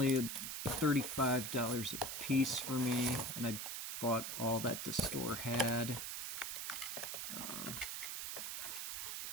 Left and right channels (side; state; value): right; noise; hiss, 4 dB below the sound